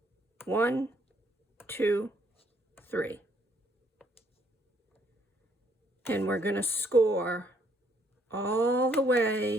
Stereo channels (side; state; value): both; normal; correlation 0.68